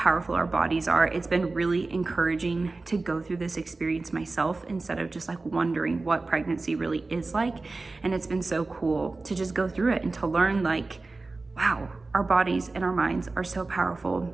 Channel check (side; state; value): left; quieter; 3.5 dB